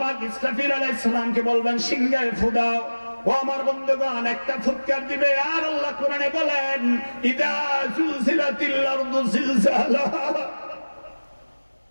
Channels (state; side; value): inverted; both; correlation -1.00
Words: ইসরাফিল আলাইহিস সালামকে বলবেন সিংহায় ফু দাও। ও আমার বন্ধুগণ, একটা ফুৎকার দিবে আর আল্লাহ কোরআনে বলেন ইদা জুলজিলাতিল আরদু জিলজালাহা